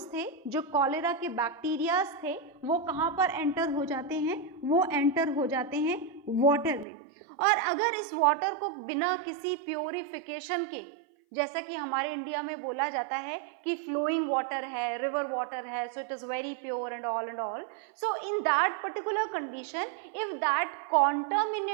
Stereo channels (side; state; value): left; drops out; at 6.9 s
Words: थे, जो कॉलेरा के बैक्टीरियाज थे, वो कहाँ पर एंटर हो जाते हैं, वो एंटर हो जाते हैं वाटर में। और अगर इस वाटर को बिना किसी प्योरिफिकेशन के, जैसा कि हमारे इंडिया में बोला जाता है कि फ्लोइंग वाटर है, रिवर वाटर है, so it is very pure and all, so in that particular condition, if that